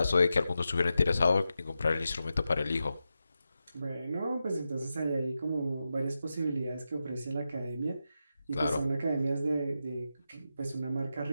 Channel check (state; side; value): inverted; both; correlation -0.89